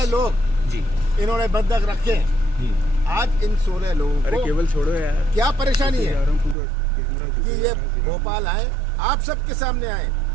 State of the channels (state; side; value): drops out; left; at 6.6 s